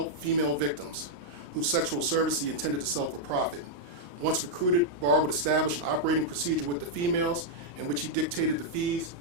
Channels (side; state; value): left; late; 35 ms